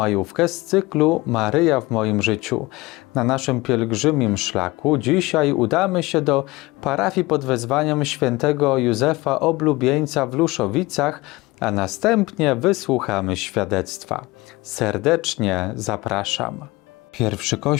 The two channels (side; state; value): right; quieter; 21.5 dB